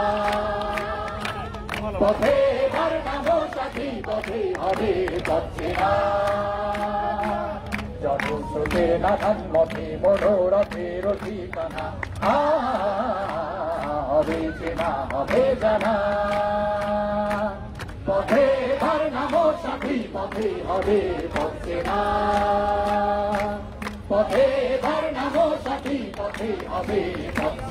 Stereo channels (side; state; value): both; identical; correlation 1.00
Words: পথে বার নামো সাথী পথে হবে হচ্ছে না, জনস্রোতের নানান মতে মনোরথের ঠিকানা, হবে যে না হবে জানা, পথে বার নামো সাথী পথে হবে হচ্ছে না, পথে বার নামো সাথী পথে হবে